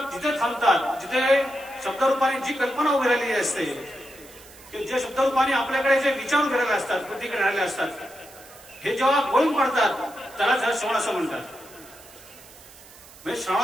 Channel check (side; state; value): right; noise; hiss, 21 dB below the sound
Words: जिथे थांबतात, जिथे शब्दरूपाने जी कल्पना उभी राहिलेली असते, जे शब्दरूपाने आपल्याकडे जे विचार उभे राहिले असतात, प्रतिक्रिया राहिले असतात, हे जेव्हा गळून पडतात त्याला श्रवण असं म्हणतात. म्हणजे